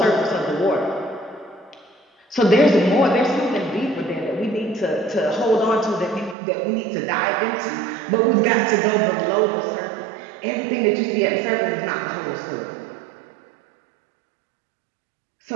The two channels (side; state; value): left; drops out; at 6.4 s